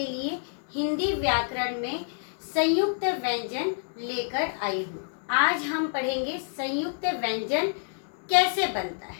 लिए हिंदी व्याकरण में संयुक्त व्यंजन लेकर आई हूँ। आज हम पढ़ेंगे संयुक्त व्यंजन कैसे बनता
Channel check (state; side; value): silent; right; digital silence